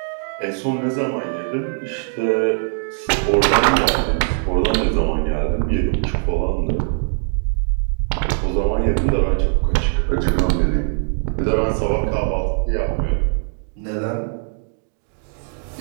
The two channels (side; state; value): left; silent; 59 dB below the other